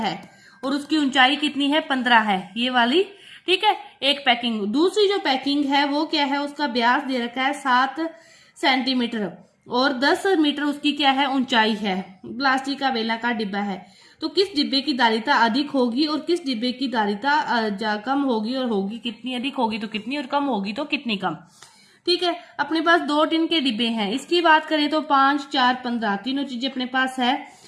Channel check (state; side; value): identical; both; correlation 1.00